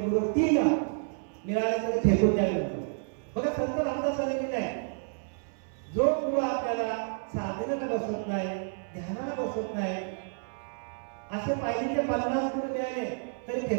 3 मिळाले तरी फेकून द्यावे म्हणतो. बघा संत रामदासांनी लिहिलंय, जो गुरु आपल्याला साधनेला बसवत नाही, ध्यानाला बसवत नाही, असे पाहिजे 50 गुरु मिळाले तरी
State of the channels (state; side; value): silent; left; 58 dB below the other